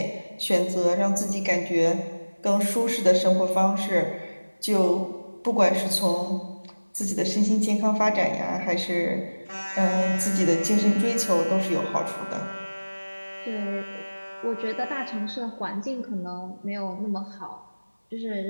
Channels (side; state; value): both; inverted; correlation -1.00